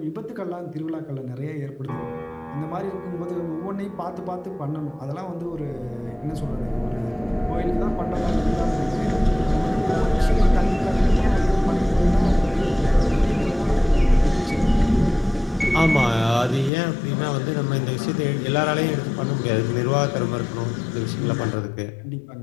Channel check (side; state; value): right; drops out; at 16.7 s